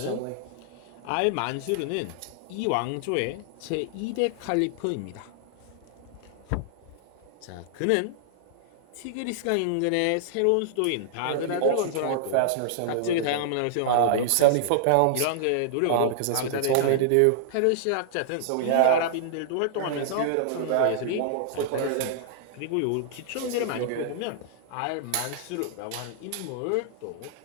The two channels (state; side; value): different; both; correlation -0.01